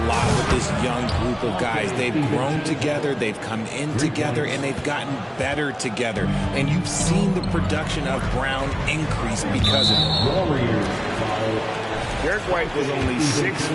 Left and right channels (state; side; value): identical; both; correlation 1.00